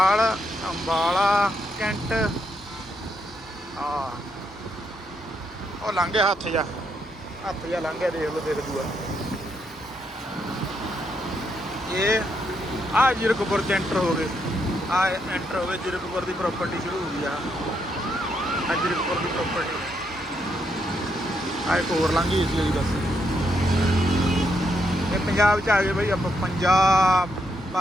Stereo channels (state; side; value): normal; both; correlation 0.78